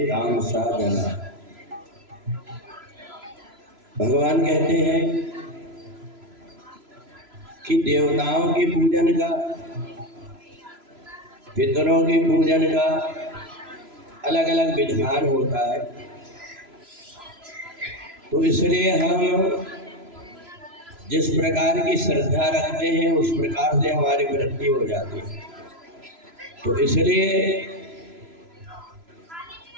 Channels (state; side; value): late; left; 3.0 ms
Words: जना। भगवान कहते हैं कि देवताओं के पूजन का, पितरों के पूजन का अलग अलग विधान होता है। तो इसलिए हम जिस प्रकार की श्रद्धा रखते हैं उस प्रकार से हमारी वृद्धि हो जाती है। तो इसलिए